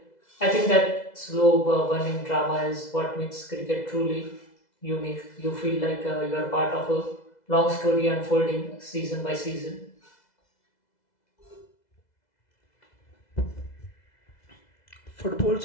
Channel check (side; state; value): right; late; 2.0 ms